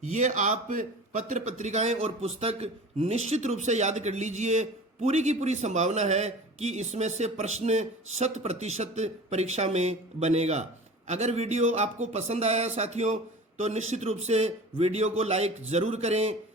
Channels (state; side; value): normal; both; correlation 0.38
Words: ये आप पत्र पत्रिकाएं और पुस्तक निश्चित रूप से याद कर लीजिए। पूरी की पूरी संभावना है कि इसमें से प्रश्न 100% परीक्षा में बनेगा। अगर वीडियो आपको पसंद आया साथियों तो निश्चित रूप से वीडियो को लाइक जरूर करें,